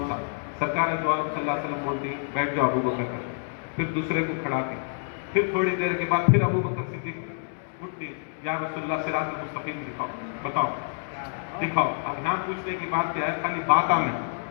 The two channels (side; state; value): right; silent; 60 dB below the other